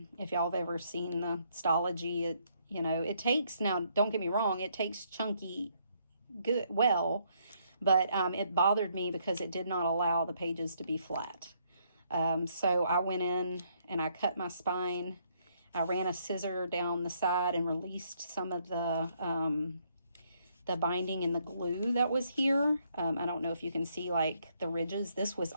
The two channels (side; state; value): both; inverted; correlation -0.71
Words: y'all have ever seen the Stalogy, it takes, now don't get me wrong, it takes chunky good, but it bothered me because it did not allow the pages to be flat. So I went in and I cut my spine. I ran a scissor down the side and released some of the binding and the glue that was here. I don't know if you can see like the ridges. This was